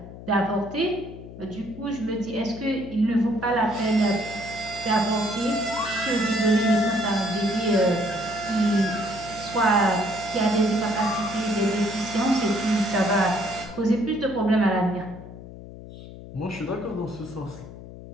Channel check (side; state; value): left; noise; hum, 14 dB below the sound